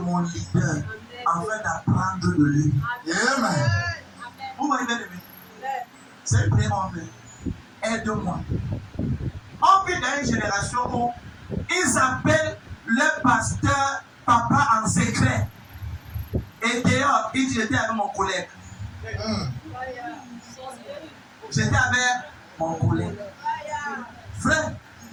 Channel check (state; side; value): identical; both; correlation 1.00